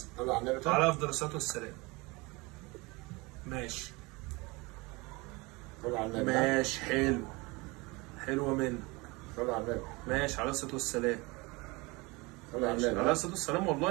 طلع على النبي. على افضل الصلاه والسلام. ماشي. طلع على النبي. ماشي حلو. حلوه منك. طلع على النبي. ماشي على الصلاه والسلام. طلع على النبي. على الصلاه والسلام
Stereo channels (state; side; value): quieter; left; 25.0 dB